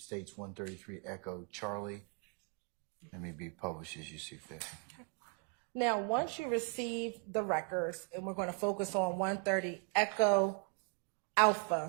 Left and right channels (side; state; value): left; quieter; 35.9 dB